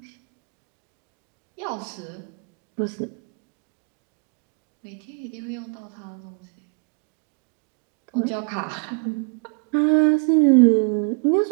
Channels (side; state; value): left; quieter; 39.0 dB